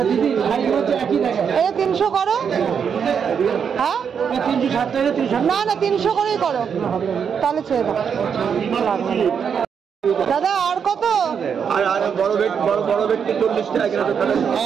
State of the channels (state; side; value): quieter; left; 7.1 dB